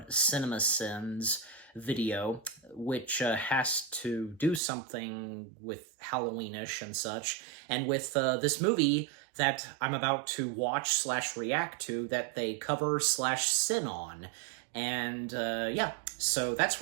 CinemaSins video, which has to do something with Halloweenish and such. And with this movie that I'm about to watch slash react to that they cover slash sin on. And, yeah, so that's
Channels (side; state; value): left; drops out; at 4.6 s